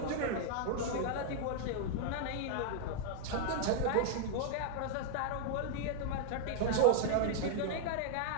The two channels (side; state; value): both; different; correlation -0.01